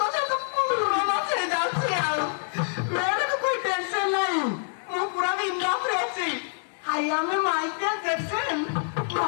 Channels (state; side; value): silent; right; 60 dB below the other